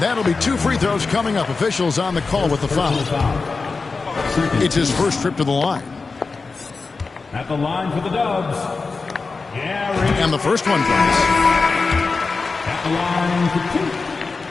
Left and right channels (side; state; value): right; quieter; 4.2 dB